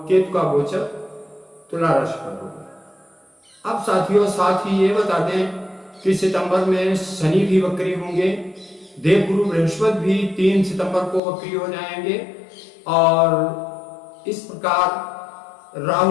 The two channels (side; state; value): right; drops out; at 11.2 s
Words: केतु का गोचर तुला राशि पर होगा। अब साथियों, साथ ही ये बता दें कि सितंबर में शनि भी वक्री होंगे। देव गुरु बृहस्पति भी 3 सितंबर को वक्री हो जाएंगे और इस प्रकार